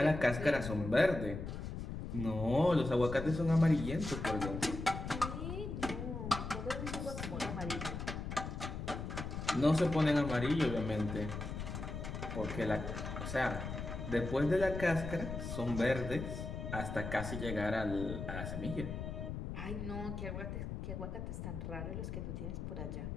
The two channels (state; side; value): noise; left; rumble, 6 dB below the sound